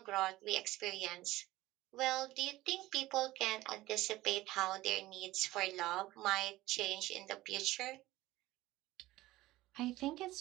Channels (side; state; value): left; quieter; 17.2 dB